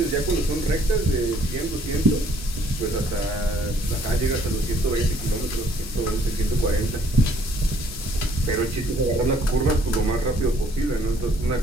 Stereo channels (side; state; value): both; normal; correlation 0.62